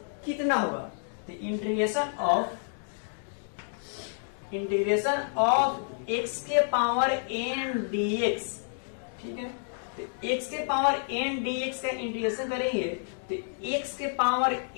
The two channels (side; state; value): right; silent; digital silence